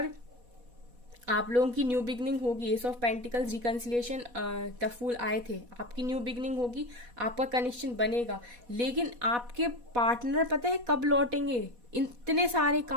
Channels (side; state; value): left; late; 4.1 ms